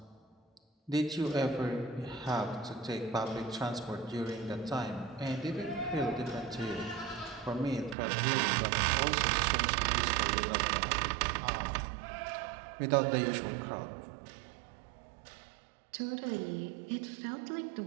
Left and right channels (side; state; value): left; drops out; at 8.0 s